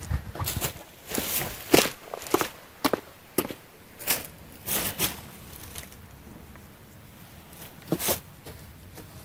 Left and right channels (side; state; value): both; identical; correlation 1.00